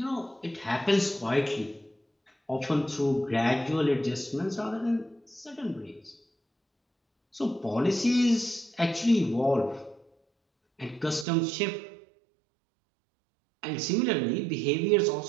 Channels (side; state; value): left; drops out; at 11.2 s